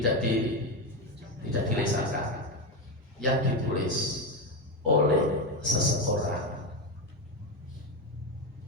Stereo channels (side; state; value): both; normal; correlation 0.12